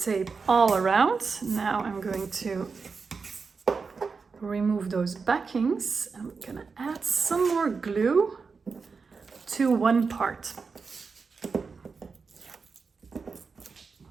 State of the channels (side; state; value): left; quieter; 4.9 dB